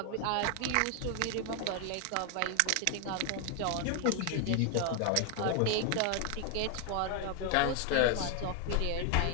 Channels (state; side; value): different; both; correlation 0.01